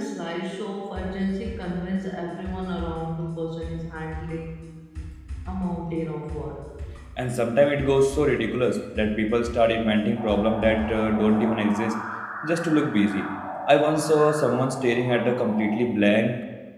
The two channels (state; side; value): identical; both; correlation 1.00